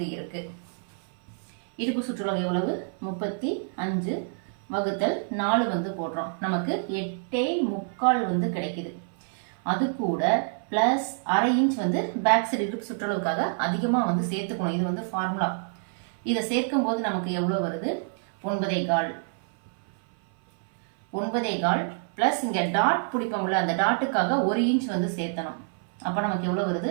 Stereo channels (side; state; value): left; silent; 57 dB below the other